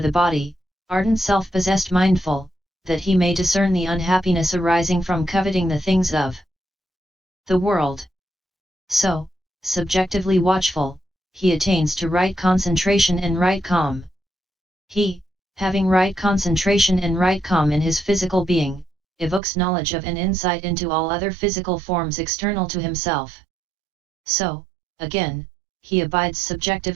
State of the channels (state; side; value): drops out; left; at 19.4 s